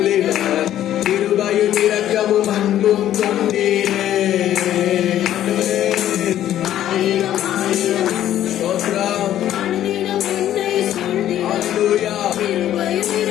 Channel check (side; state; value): right; quieter; 12.0 dB